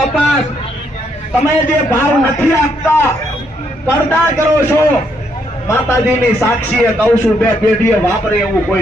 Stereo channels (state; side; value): normal; both; correlation 0.74